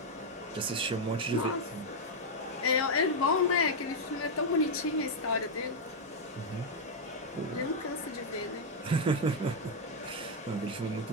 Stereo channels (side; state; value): both; normal; correlation -0.01